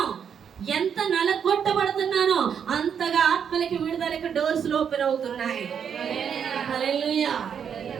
ఎంత నలగొట్టబడుతున్నానో అంతగా ఆత్మలకి విడుదలకి డోర్స్ ఓపెన్ అవుతున్నాయి. హల్లెలూయా.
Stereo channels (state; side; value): quieter; left; 7.6 dB